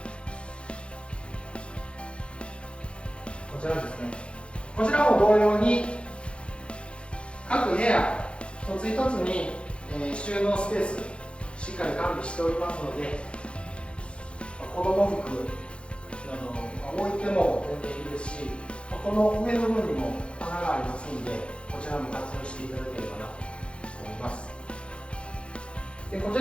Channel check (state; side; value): late; right; 0.058 ms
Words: こちらですね。こちらも同様に各部屋一つ一つに、収納スペースしっかり完備しておりますので、子供服置いても全然いいですし、この上の部分にも穴がありますので、こちらも活用していただければなと思います。でこち